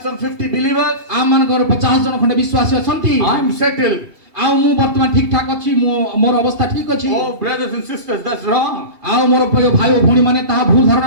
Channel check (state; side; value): late; left; 2.8 ms